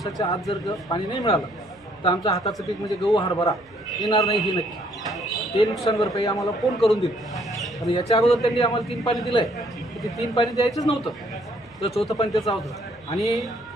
आत जर पाणी नाही मिळालं तर आमच्या हाताचं पीक म्हणजे गहू, हरभरा येणार नाही ही नक्की. ते नुकसान भरपाई आम्हाला कोण करून देईल. आणि याच्या अगोदर त्यांनी आम्हाला 3 पाणी दिलं आहे, ते 3 पाणी द्यायचंच नव्हतं, तर चौथं पाणी त्याचं होतं. आणि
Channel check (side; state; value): right; noise; hum, 29 dB below the sound